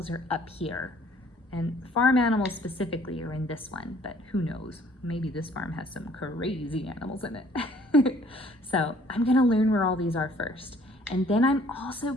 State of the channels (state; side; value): normal; both; correlation 0.58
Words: are up here. And farm animals specifically are in this one, but who knows? Maybe this farm has some crazy animals in it. So I'm going to learn where all these are first. And then I'm also